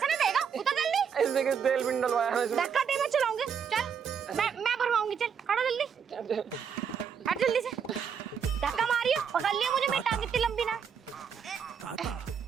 नहीं देगा, उतर जल्दी। इसने के तेल भी डलवाया है इसमें। धक्का दे, मैं चलाऊंगी। चल मैं भरवाऊंगी, चल खड़ा जल्दी, हट जल्दी से। धक्का मारियो, पकड़ लियो मुझे, मेरी टांग इतनी लंबी ना।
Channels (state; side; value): quieter; left; 7.1 dB